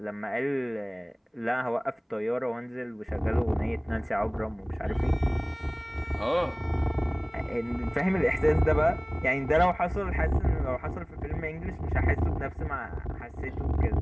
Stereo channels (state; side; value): identical; both; correlation 1.00